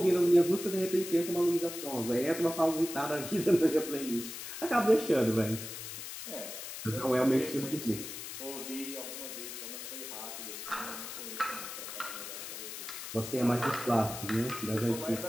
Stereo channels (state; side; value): noise; left; hiss, 9 dB below the sound